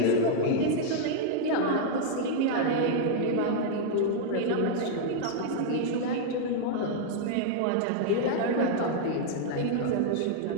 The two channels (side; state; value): both; different; correlation -0.01